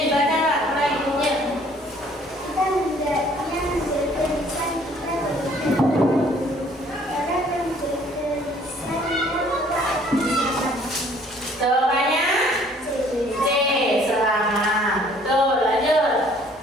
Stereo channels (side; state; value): both; normal; correlation 0.58